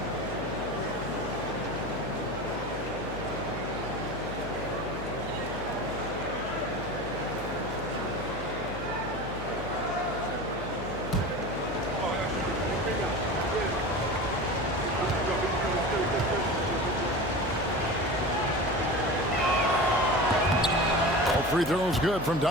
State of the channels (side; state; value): left; noise; hum, 11 dB below the sound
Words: Free throws good from